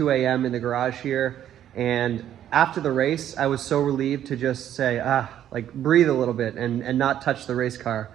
a.m. in the garage here. And after the race, I was so relieved to just say, like breathe a little bit and not touch the race car.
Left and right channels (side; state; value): left; quieter; 11.0 dB